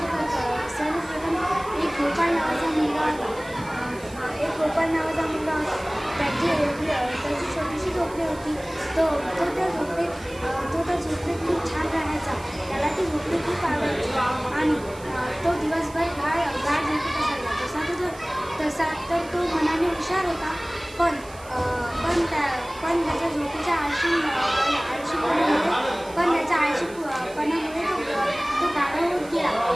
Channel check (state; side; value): noise; right; hiss, 21 dB below the sound